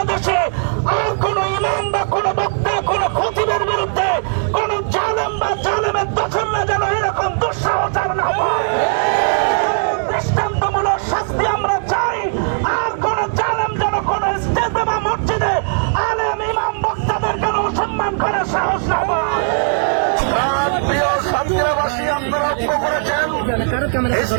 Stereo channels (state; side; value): silent; left; 67 dB below the other